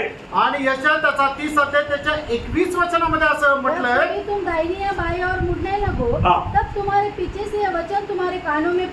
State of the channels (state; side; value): identical; both; correlation 1.00